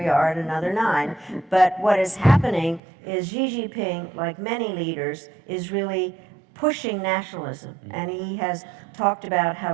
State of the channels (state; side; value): drops out; left; at 2.8 s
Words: are at another 9. But what is happening is Xi Jinping, like many leaders, is really pushing nationalism. And he has talked about